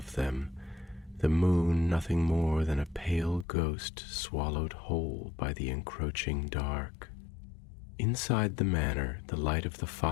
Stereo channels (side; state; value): right; drops out; at 3.5 s